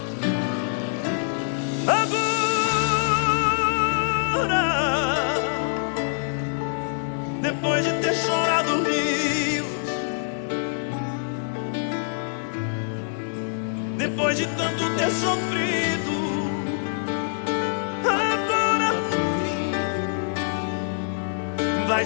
Agora, depois de ter chorado rios, depois de tanto ter sofrido, agora por fim vai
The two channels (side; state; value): right; silent; digital silence